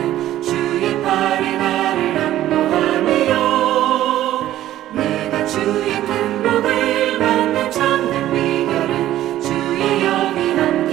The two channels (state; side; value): quieter; left; 13.4 dB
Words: 주의 팔에 나를 안보하며 내가 주의 큰 복을 받는 참된 비결은 주의 영이